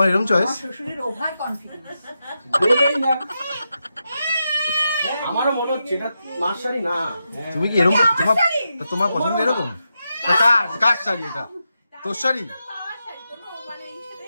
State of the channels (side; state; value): both; inverted; correlation -0.87